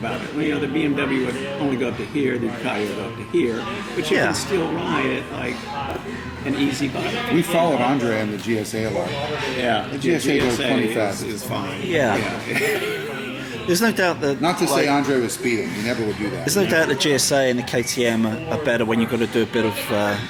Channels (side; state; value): both; identical; correlation 1.00